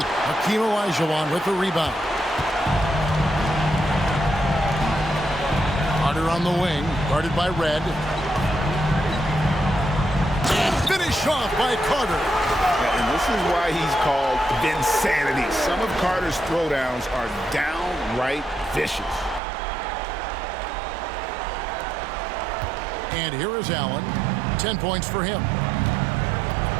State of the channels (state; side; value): drops out; left; at 19.4 s